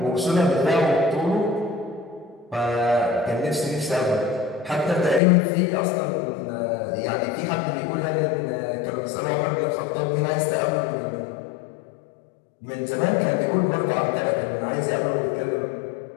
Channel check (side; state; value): right; drops out; at 5.2 s